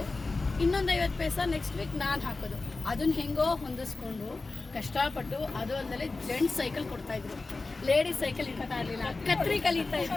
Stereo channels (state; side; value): quieter; right; 3.6 dB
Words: ಇನ್ನೊಂದು 50 ಪೈಸಾ ನೆಕ್ಸ್ಟ್ ವೀಕ್ ನಾನು ಹಾಕೋದು. ಅದನ್ನ ಹೆಂಗೋ ಹೊಂದಿಸ್ಕೊಂಡು ಕಷ್ಟಪಟ್ಟು, ಅದು ಅಂದಲೇ ಜೆಂಟ್ಸ್ ಸೈಕಲ್ ಕೊಡ್ತಾಯಿದ್ರು, ಲೇಡೀಸ್ ಸೈಕಲ್ ಇರ್ತಾ ಇರಲಿಲ್ಲ. ಕತ್ರಿ ಕಲಿತಾ